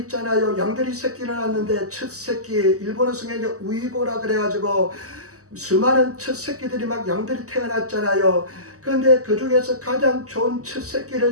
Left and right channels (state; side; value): late; left; 0.66 ms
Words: 있잖아요. 양들이 새끼를 낳는데 첫 새끼 일본어 성경에 우이고라 그래가지고 수많은 첫 새끼들이 막 양들이 태어났잖아요. 그런데 그 중에서 가장 좋은 첫 새끼를